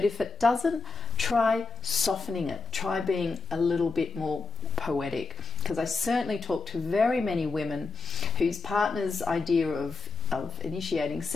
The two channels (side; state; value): right; quieter; 3.9 dB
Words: if it doesn't, try softening it. Try being a little bit more poetic. Because I certainly talk to very many women whose partner's idea of initiating